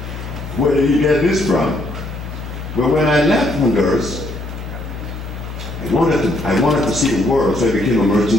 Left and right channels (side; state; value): left; noise; hum, 9 dB below the sound